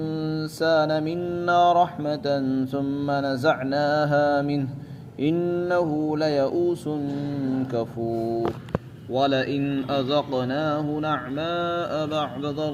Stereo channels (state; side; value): identical; both; correlation 1.00